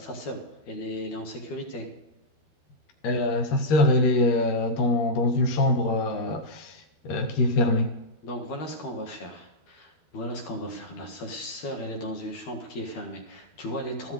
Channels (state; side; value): late; right; 12 ms